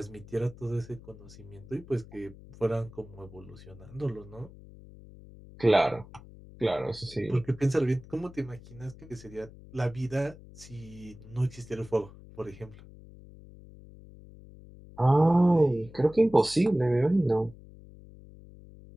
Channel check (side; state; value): left; noise; hum, 19 dB below the sound